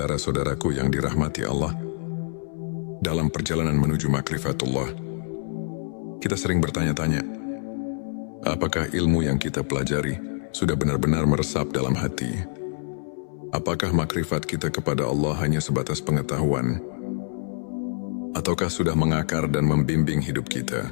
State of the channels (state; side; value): silent; right; 59 dB below the other